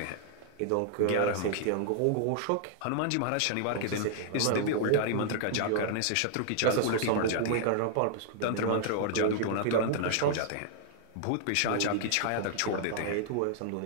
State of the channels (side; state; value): both; different; correlation -0.01